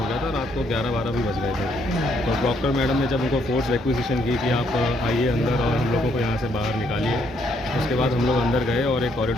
गया था, रात को 11-12 भी बज गए थे। तो प्रॉक्टर मैडम ने जब उनको फोर्स रिक्वेजिशन की कि आप आइए अंदर और हम लोगों को यहाँ से बाहर निकालिए, उसके बाद हम लोग अंदर गए और एक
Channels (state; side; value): normal; both; correlation 0.71